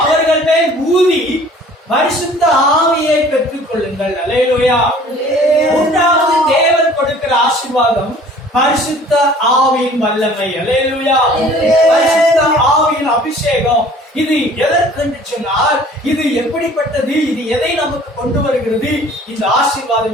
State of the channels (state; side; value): normal; both; correlation 0.51